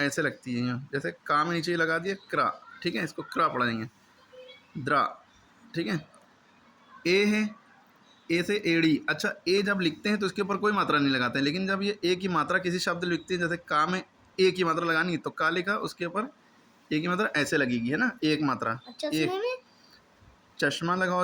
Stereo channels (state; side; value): identical; both; correlation 1.00